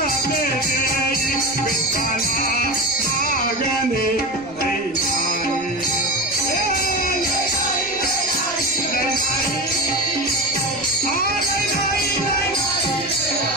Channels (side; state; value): right; noise; rumble, 27 dB below the sound